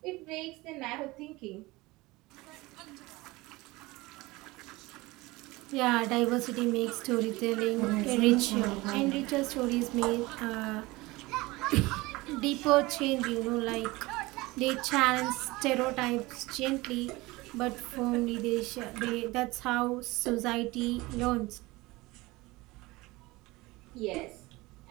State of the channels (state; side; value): quieter; left; 21.3 dB